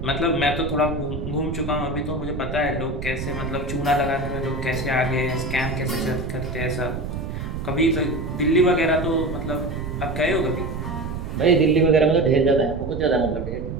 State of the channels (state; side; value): noise; right; rumble, 6 dB below the sound